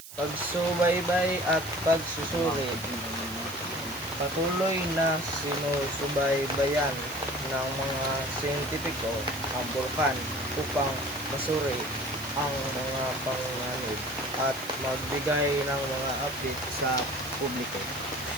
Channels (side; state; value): right; noise; hiss, 14 dB below the sound